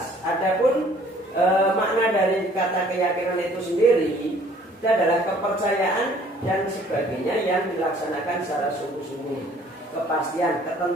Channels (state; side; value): normal; both; correlation 0.56